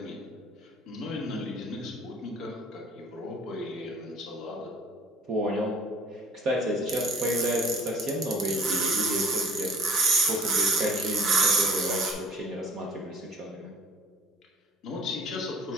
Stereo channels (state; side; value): normal; both; correlation 0.50